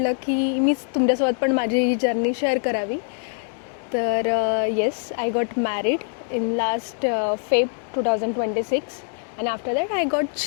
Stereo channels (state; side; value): silent; right; 55 dB below the other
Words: की मीच तुमच्यासोबत पण माझी ही जर्नी शेअर करावी. तर yes, I got married in last Feb 2026 and after that I got